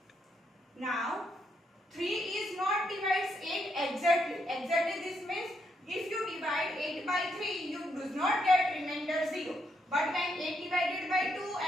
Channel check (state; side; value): normal; both; correlation 0.78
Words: Now, 3 is not divides 8 exactly. Exactly this means if you divide 8 by 3, you do not get remainder 0. But when 8 divided by 2